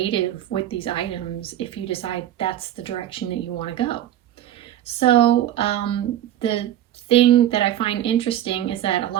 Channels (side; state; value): left; quieter; 12.1 dB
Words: with these items if you decide that's the direction that you want to go. So the thing that I find interesting is that a